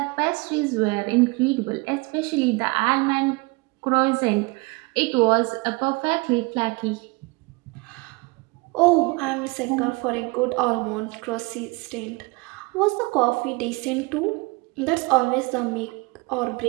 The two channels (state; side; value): quieter; left; 26.5 dB